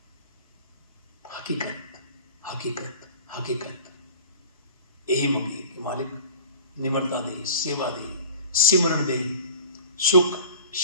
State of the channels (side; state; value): both; inverted; correlation -0.42